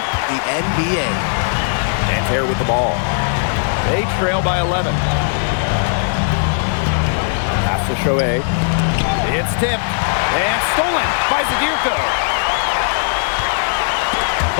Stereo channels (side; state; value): right; silent; digital silence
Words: NBA. Nanterre with the ball. They trail by 11. Pass to Chauvet. It's tipped and stolen by Zadirko.